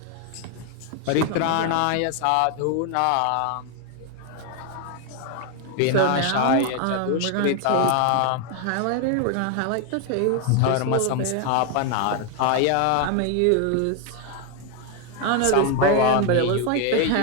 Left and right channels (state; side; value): different; both; correlation 0.01